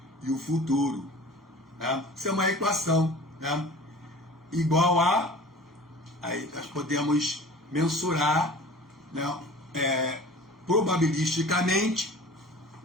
e o futuro. Né? Isso é uma equação, né, igual aí nós podemos mensurar, né, probabilisticamente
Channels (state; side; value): normal; both; correlation 0.42